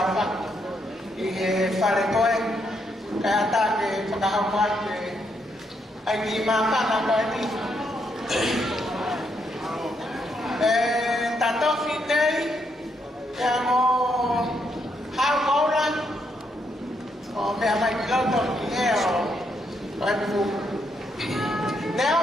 Ihe fare kau kaya tak ke pengahwat ke lagi makan apa ini? Tato fitei yang mau hal orang, memang kita tu ni ibu. Nếu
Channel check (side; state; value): both; normal; correlation 0.77